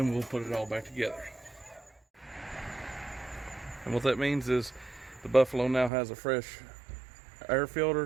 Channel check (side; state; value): left; drops out; at 5.9 s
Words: we'll put it all back together. And what that means is the Buffalo now has a fresh air filter,